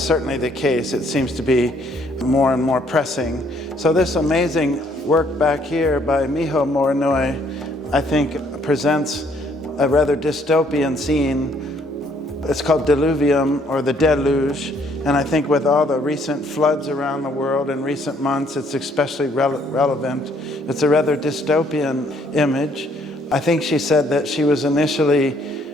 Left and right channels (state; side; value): normal; both; correlation 0.66